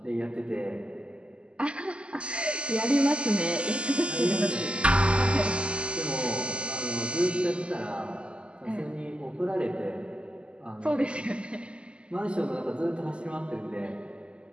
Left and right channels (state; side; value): late; left; 0.053 ms